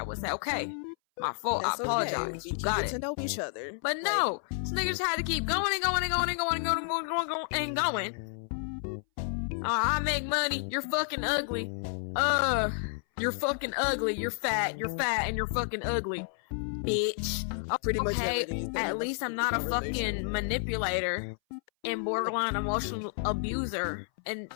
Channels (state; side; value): silent; right; 57 dB below the other